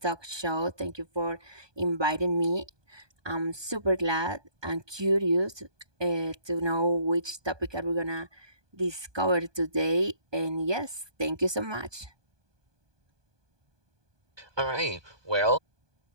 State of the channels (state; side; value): late; left; 1.2 ms